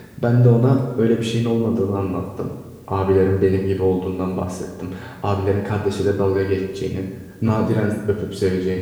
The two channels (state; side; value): identical; both; correlation 1.00